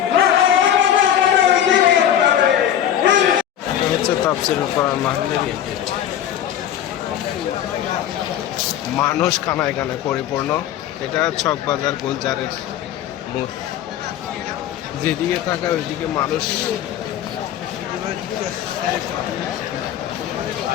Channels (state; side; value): quieter; right; 10.6 dB